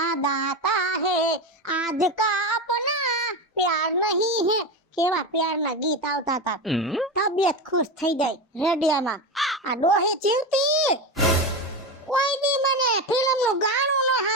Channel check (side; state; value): both; normal; correlation 0.19